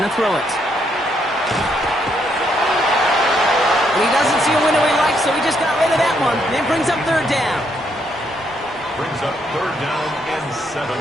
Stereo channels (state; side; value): normal; both; correlation 0.74